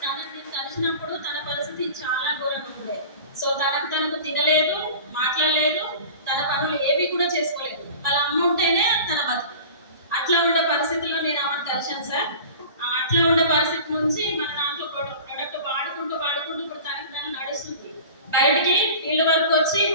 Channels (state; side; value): inverted; both; correlation -0.39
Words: కలిసినప్పుడు తన పరిస్థితి చాలా ఘోరంగా ఉండే. సో తనకు తినలేదు, మాట్లాడలేదు, తన పనులు ఏవి కూడా చేసుకోలేదు. వాళ్ళ అమ్మ ఉంటేనే తన బతుకు. అట్లా ఉండే పరిస్థితుల్లో నేను ఆమెను కలిశాను సార్. అట్లా ఉండే పరిస్థితి నుంచి మన దాంట్లో ప్రొడక్ట్ వాడుకుంటూ ఇప్పుడు తనకు నడుస్తుంది. బయటికి ఫీల్డ్ వర్క్